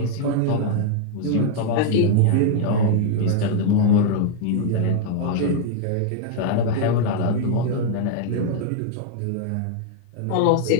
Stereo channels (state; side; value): different; both; correlation -0.01